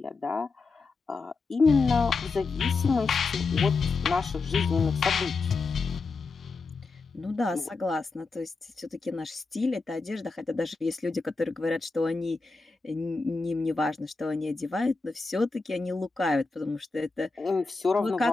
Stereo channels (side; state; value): right; quieter; 4.1 dB